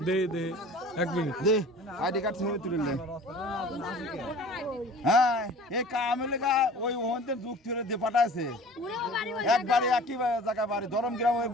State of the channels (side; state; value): both; normal; correlation 0.44